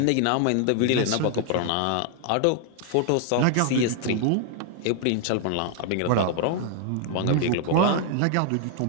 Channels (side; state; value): both; different; correlation 0.00